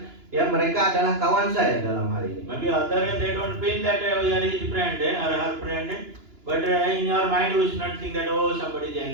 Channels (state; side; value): late; left; 2.9 ms